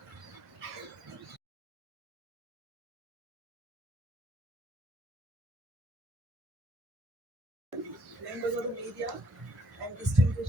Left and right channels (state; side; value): late; left; 2.0 ms